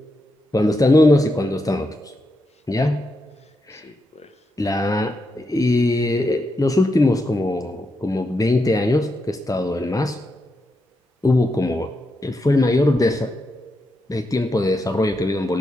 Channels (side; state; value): both; normal; correlation 0.84